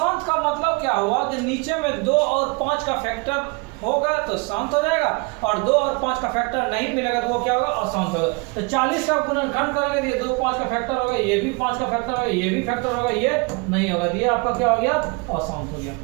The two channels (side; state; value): left; quieter; 29.3 dB